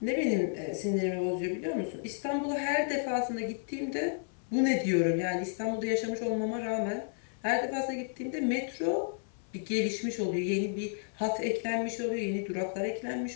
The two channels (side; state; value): right; silent; 56 dB below the other